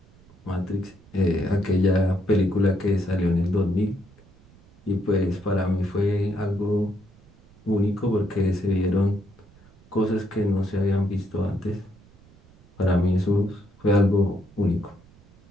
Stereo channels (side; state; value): right; noise; rumble, 27 dB below the sound